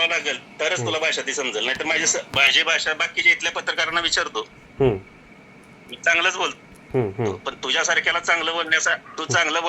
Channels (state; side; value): identical; both; correlation 1.00